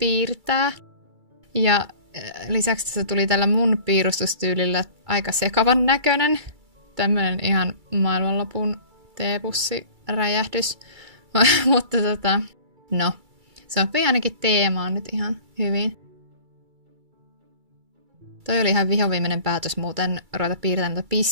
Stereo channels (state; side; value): late; left; 2.3 ms